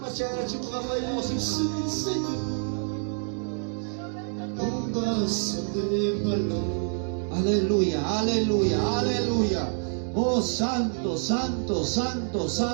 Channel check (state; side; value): silent; left; 59 dB below the other